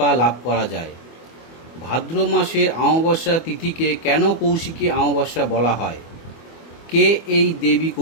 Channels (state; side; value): late; right; 24 ms